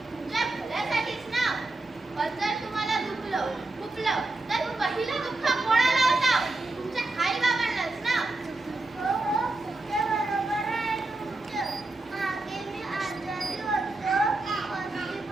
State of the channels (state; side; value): quieter; left; 3.1 dB